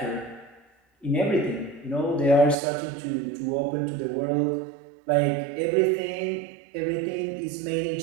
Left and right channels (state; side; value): drops out; left; at 2.6 s